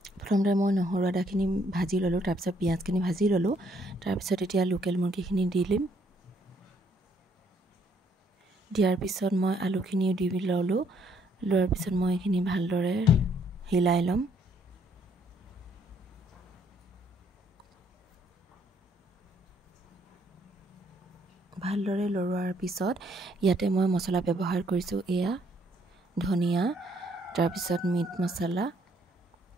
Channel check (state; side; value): normal; both; correlation 0.67